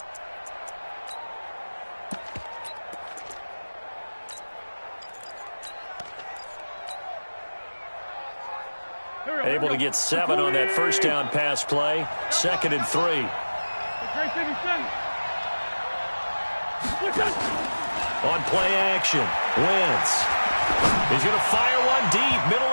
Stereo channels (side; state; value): both; inverted; correlation -1.00